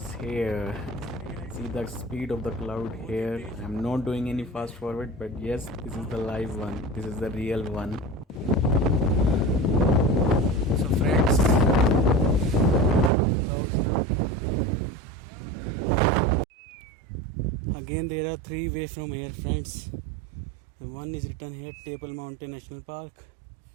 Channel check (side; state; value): left; drops out; at 13.1 s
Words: here. See the speed of the cloud here. I'm not doing any fast forward, but yes, this is the live one. This is the real one. So friends, again there are three ways from here, friends. One is written here, Table Mountain National Park.